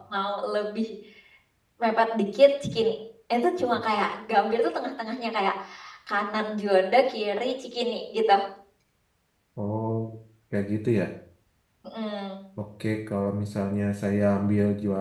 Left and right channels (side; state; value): both; identical; correlation 1.00